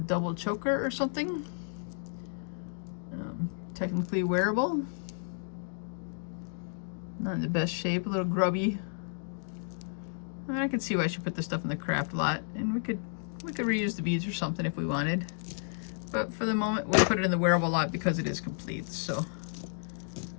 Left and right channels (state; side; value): silent; right; digital silence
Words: choker or something. Technically wearable. Not in the best shape, a little grubby. I can see why she put this stuff in the craft lot, and we could reuse the beads or something if we wanted. But for the moment, we'll put it in the wearable lot because it is complete. So,